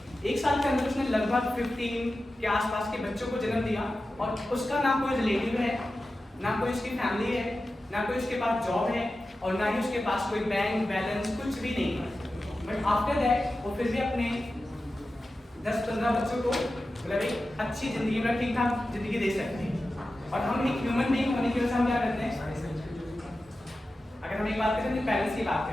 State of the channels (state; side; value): normal; both; correlation 0.93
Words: 1 साल के अंदर उसने लगभग 15 के आसपास के बच्चों को जन्म दिया, और उसका ना कोई रिलेटिव है, ना कोई उसकी फैमिली है, ना कोई उसके पास जॉब है, और ना ही उसके पास कोई बैंक बैलेंस कुछ भी नहीं है। बट आफ्टर दैट वो फिर भी अपने 10-15 बच्चों को मतलब एक अच्छी जिंदगी में ठीक ठाक जिंदगी दे सकते हैं। और हम एक ह्यूमन बीइंग होने की वजह से हम क्या करते हैं, अगर हम एक बात करें तो पेरेंट्स की बात